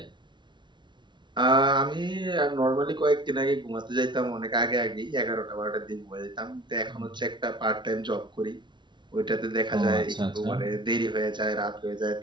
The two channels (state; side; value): late; left; 0.23 ms